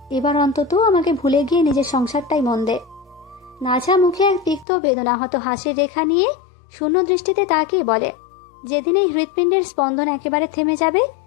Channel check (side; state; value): right; drops out; at 4.7 s